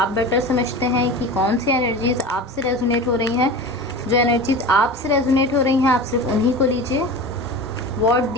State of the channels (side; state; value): both; normal; correlation 0.32